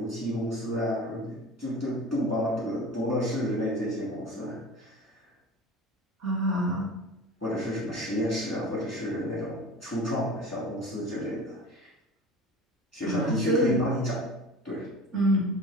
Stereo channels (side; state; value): both; normal; correlation 0.37